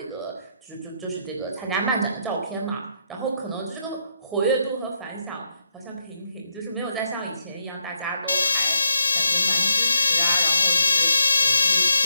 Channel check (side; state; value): both; inverted; correlation -0.80